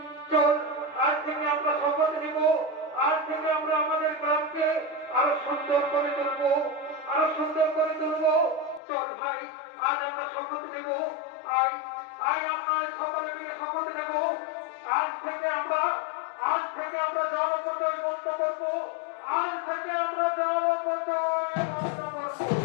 চল আজ থেকে আমরা শপথ নিব, আজ থেকে আমরা আমাদের গ্রামকে আরো সুন্দর করে তুলবো, আরো সুন্দর করে তুলবো। চল ভাই, আজ আমরা শপথ নেব। আয় আয়, আমরা সকলে মিলে শপথ নেব। আজ থেকে আমরা জলপথই বন্ধ করবো। আজ থেকে আমরা জলপথই বন্ধ করবো।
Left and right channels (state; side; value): drops out; right; at 8.8 s